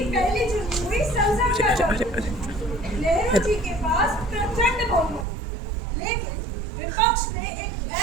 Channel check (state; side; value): drops out; left; at 5.2 s